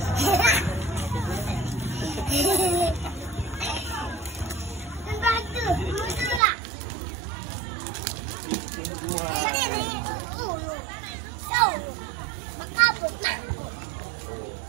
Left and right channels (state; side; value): drops out; left; at 6.4 s